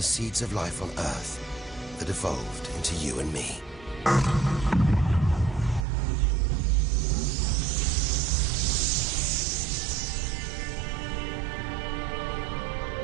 seeds of life on Earth that evolved into you and me.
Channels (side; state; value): left; drops out; at 5.9 s